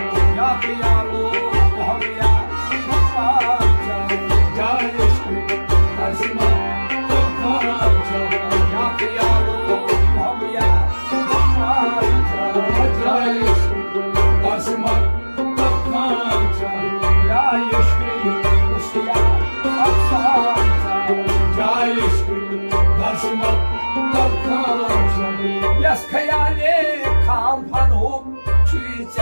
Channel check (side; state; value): both; inverted; correlation -1.00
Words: Ya kıyalo muhammiya muhammiya Jayeshri Dasma Takancha Ya kıyalo muhammiya muhammiya Jayeshri Dasma Takancha Jayeshri Kusya Apsanta Jayeshri Dasma Takancha Yas khayale kampan hum